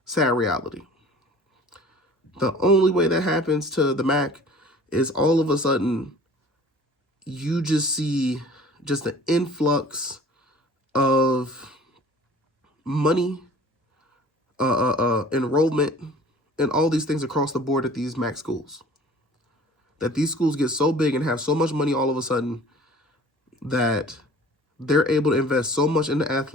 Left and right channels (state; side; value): normal; both; correlation 0.47